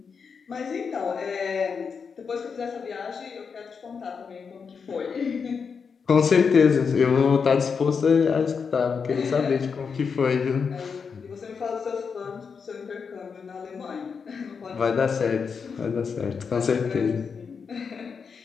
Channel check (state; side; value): quieter; right; 5.8 dB